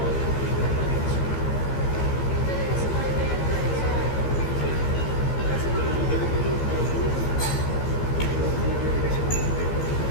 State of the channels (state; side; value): late; right; 15 ms